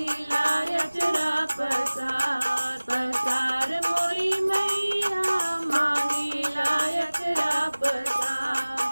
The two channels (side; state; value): both; inverted; correlation -1.00